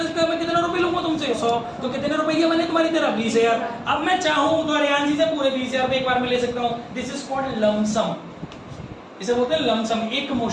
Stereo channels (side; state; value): both; identical; correlation 1.00